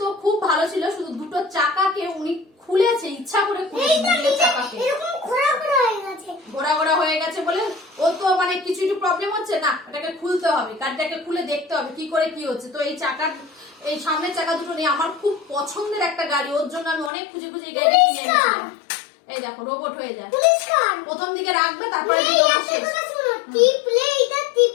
খুব ভালো ছিল। শুধু দুটো চাকাকে উনি খুলেছে, ইচ্ছা করে খুলেছে চাকাকে, এরকম ঘোরা ঘোরা হয়ে গেছে, ঘোরা ঘোরা হয়ে গেছে বলে ও তো মানে কিছু একটু প্রবলেম হচ্ছে না, এটাকে খুলতে হবে, গাড়িটাকে খুলে দেখতে হবে কি করে কি হচ্ছে। তো এই চাকার, এই সামনের চাকা দুটো নেই, আমার খুব পছন্দের একটা গাড়ি, ওর জন্য আমি অনেক খুঁজে খুঁজে এই গাড়িটা কিনে এনেছিলাম। এই দেখো রোবট হয়ে যায়, প্রথম দিকে রাখবে, তারপরে টিপলে এটা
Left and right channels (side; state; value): right; drops out; at 17.1 s